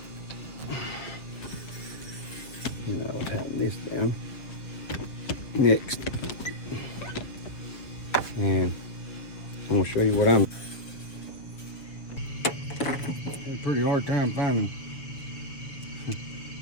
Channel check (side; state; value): right; late; 7.1 ms